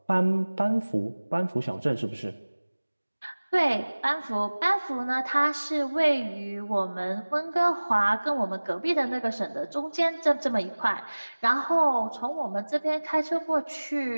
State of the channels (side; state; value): both; inverted; correlation -1.00